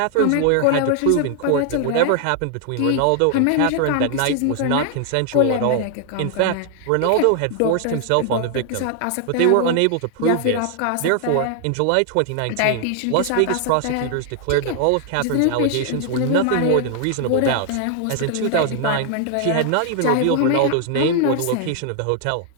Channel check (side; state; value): both; different; correlation 0.00